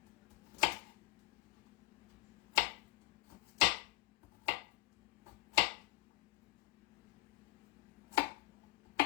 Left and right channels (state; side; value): quieter; right; 19.7 dB